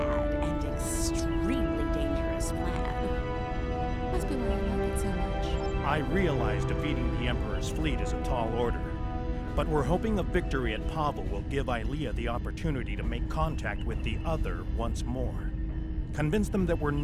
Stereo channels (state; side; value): identical; both; correlation 1.00